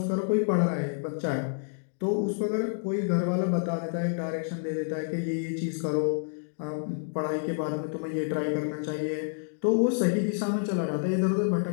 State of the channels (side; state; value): right; silent; digital silence